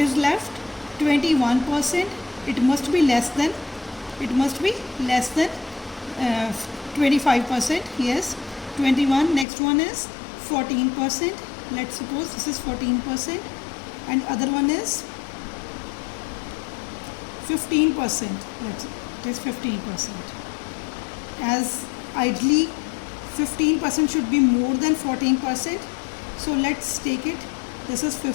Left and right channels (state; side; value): drops out; right; at 9.5 s